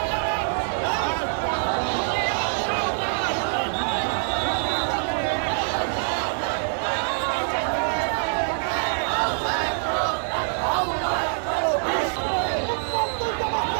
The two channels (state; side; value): silent; left; digital silence